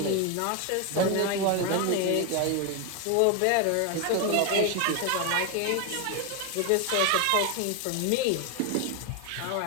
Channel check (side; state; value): both; different; correlation 0.01